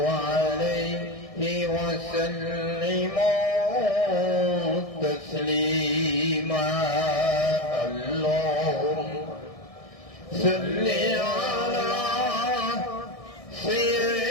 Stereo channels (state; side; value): late; right; 1.6 ms